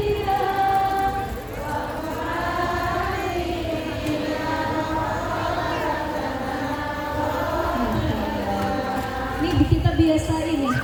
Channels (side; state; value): both; identical; correlation 1.00